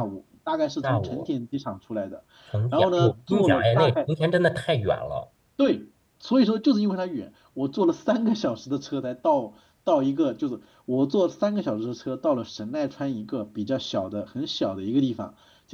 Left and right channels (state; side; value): identical; both; correlation 1.00